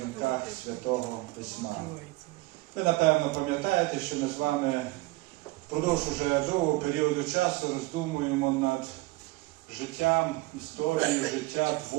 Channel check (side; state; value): left; quieter; 20.9 dB